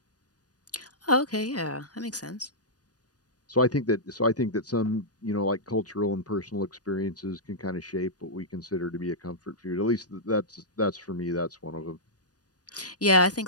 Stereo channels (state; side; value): late; right; 0.68 ms